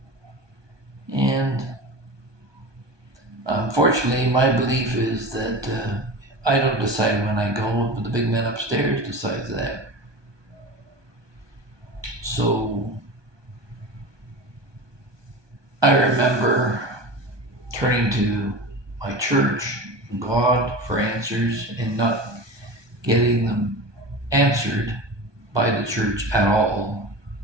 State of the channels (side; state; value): left; late; 1.2 ms